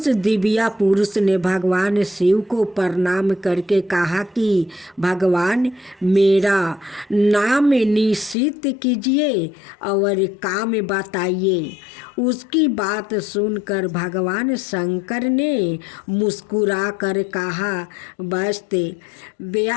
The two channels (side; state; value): right; drops out; at 8.3 s